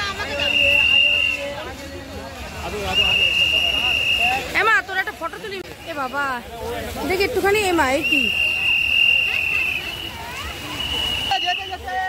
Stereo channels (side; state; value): both; identical; correlation 1.00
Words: এমা তোর একটা ফটো তুলি। এ বাবা দেখি একটুখানি। এমা এই কি,